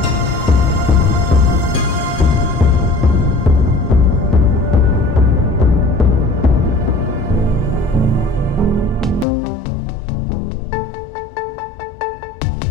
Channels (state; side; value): drops out; right; at 9.2 s